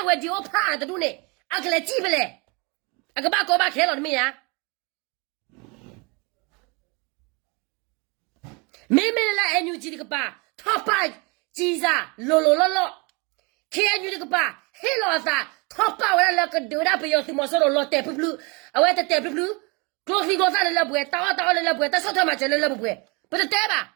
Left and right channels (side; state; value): left; quieter; 29.7 dB